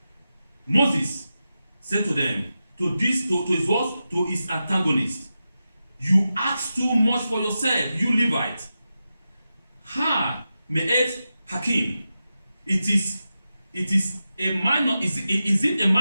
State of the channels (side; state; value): both; inverted; correlation -0.91